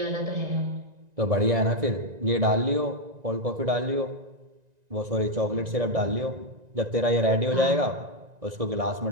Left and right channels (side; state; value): left; late; 1.9 ms